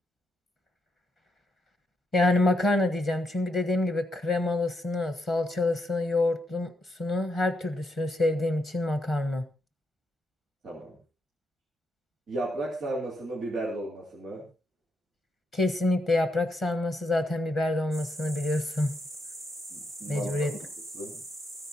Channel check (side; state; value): both; normal; correlation 0.80